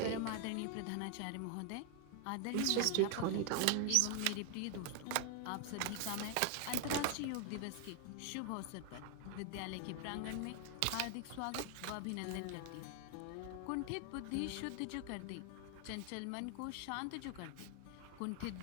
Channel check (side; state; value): both; different; correlation 0.00